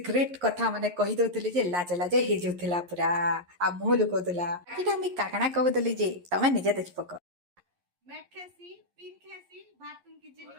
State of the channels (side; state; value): left; late; 11 ms